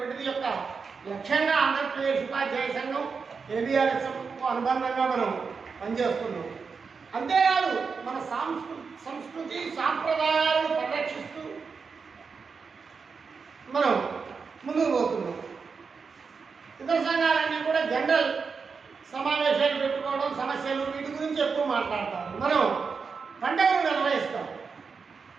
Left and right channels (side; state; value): left; quieter; 5.3 dB